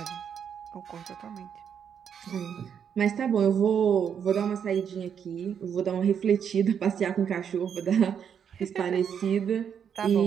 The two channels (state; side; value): quieter; left; 7.9 dB